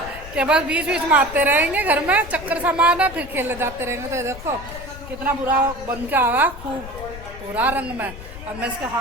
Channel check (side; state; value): left; noise; rumble, 13 dB below the sound